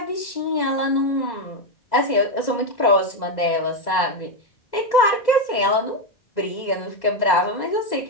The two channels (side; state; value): right; late; 2.0 ms